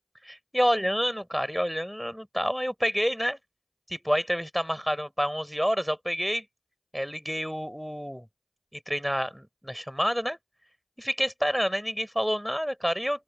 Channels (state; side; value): identical; both; correlation 1.00